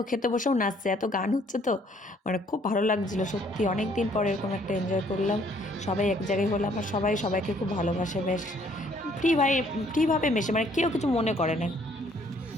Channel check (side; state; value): both; normal; correlation 0.63